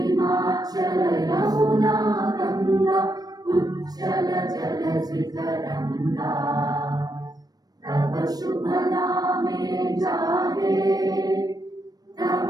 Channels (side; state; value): left; late; 0.19 ms